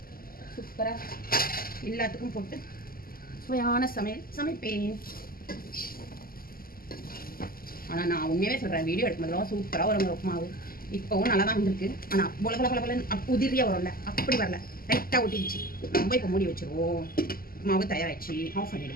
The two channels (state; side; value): late; right; 0.42 ms